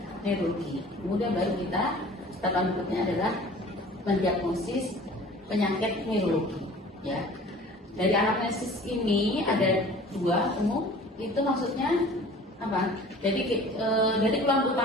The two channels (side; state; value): both; normal; correlation 0.46